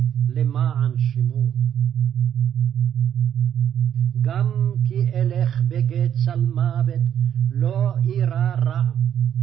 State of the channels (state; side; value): quieter; left; 9.6 dB